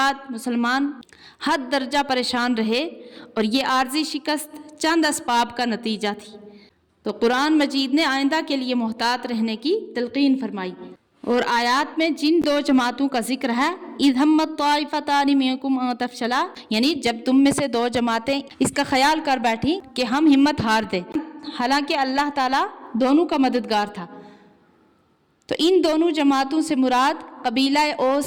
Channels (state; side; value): identical; both; correlation 1.00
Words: مسلمان حد درجہ پریشان رہے، اور یہ عارضی شکست چند اسباب کا نتیجہ تھی۔ تو قرآن مجید نے آئندہ کے لیے محتاط رہنے کی تلقین فرمائی، اور آیات میں جن 2 جماعتوں کا ذکر ہے، اذ ہمت طائفتان منکم ان تفشلا، یعنی جب تم میں سے 2 جماعتیں اس کا خیال کر بیٹھی کہ ہم ہمت ہار دیں، حالانکہ اللہ تعالیٰ دونوں کا مددگار تھا۔ تو ان دونوں جماعتوں سے مراد قبیلہ